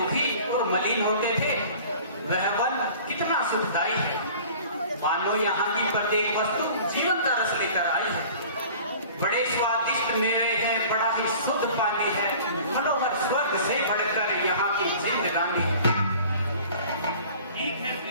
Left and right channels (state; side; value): inverted; both; correlation -0.45